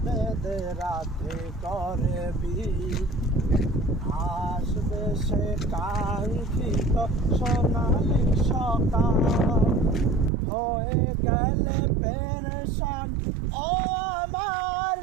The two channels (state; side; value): drops out; left; at 10.3 s